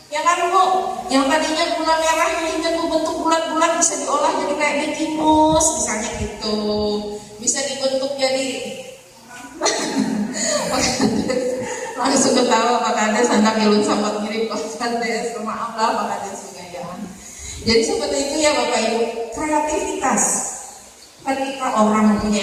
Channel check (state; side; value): identical; both; correlation 1.00